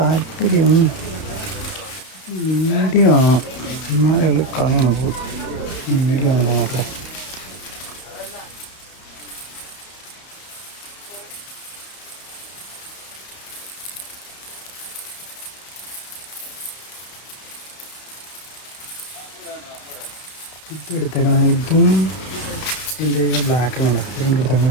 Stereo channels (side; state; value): right; late; 32 ms